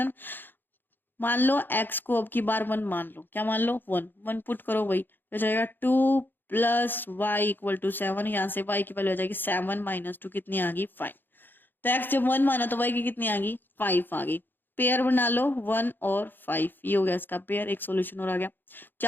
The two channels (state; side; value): late; right; 0.094 ms